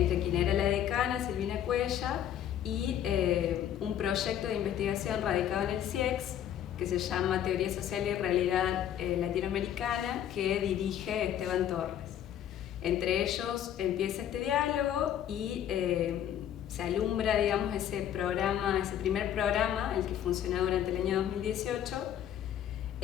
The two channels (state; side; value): quieter; right; 10.4 dB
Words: quien era la decana, Silvina Cuella, y un proyecto de investigación radicado en el CIEX, que se llama Teoría Social y Realidad Latinoamericana, que dirige Esteban Torres. Entre ellos empieza este diálogo y se alumbra, digamos, ese primer programa, el que funcionó durante el año 2018,